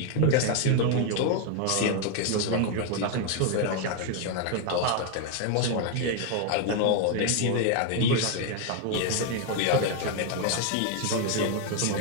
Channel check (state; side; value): different; both; correlation 0.01